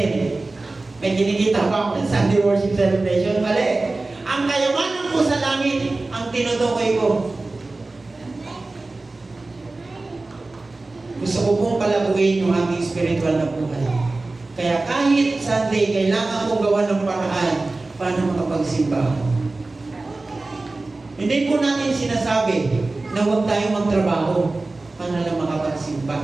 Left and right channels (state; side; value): quieter; left; 3.2 dB